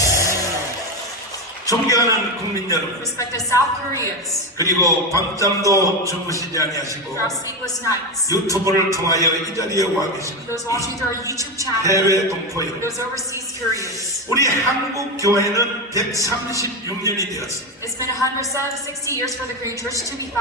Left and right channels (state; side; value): normal; both; correlation 0.15